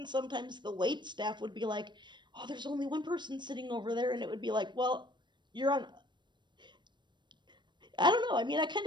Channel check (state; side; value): late; left; 0.22 ms